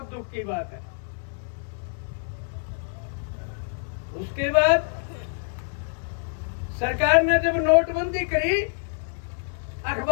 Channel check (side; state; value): right; silent; 60 dB below the other